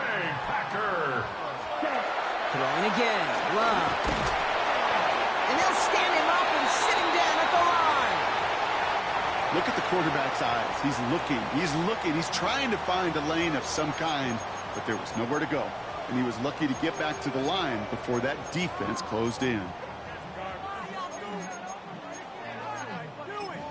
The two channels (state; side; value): identical; both; correlation 1.00